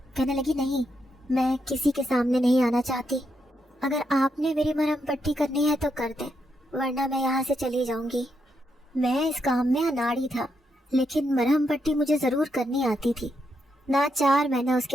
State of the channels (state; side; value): normal; both; correlation 0.81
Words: کہنے لگی نہیں، میں کسی کے سامنے نہیں آنا چاہتی۔ اگر آپ نے میری مرہم پٹی کرنی ہے تو کر دیں، ورنہ میں یہاں سے چلی جاؤں گی۔ میں اس کام میں اناڑی تھا، لیکن مرہم پٹی مجھے ضرور کرنی آتی تھی۔ ناچار میں نے اس